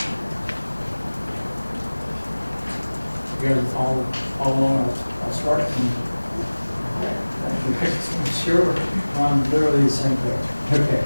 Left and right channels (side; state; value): both; inverted; correlation -1.00